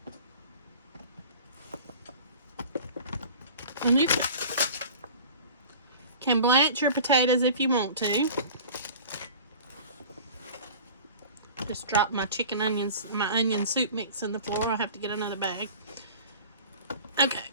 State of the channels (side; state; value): both; inverted; correlation -0.41